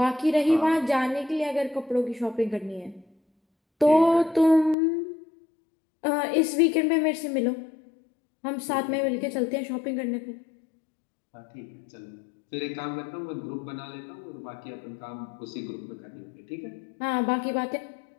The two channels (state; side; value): drops out; right; at 4.8 s